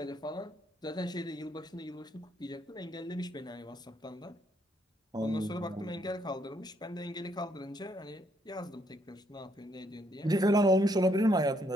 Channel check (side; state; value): both; normal; correlation 0.72